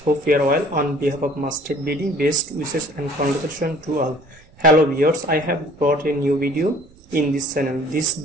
Hope you are well. On behalf of Master BD, best wishes and congratulations to all. Hello viewers, I have brought a new video in this channel. This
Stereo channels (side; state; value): right; noise; rumble, 26 dB below the sound